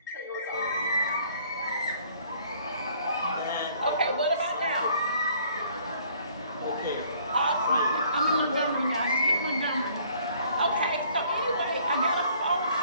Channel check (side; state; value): both; inverted; correlation -0.59